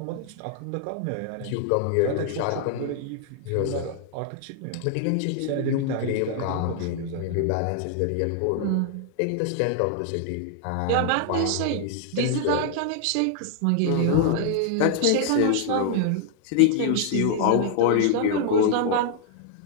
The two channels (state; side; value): different; both; correlation -0.01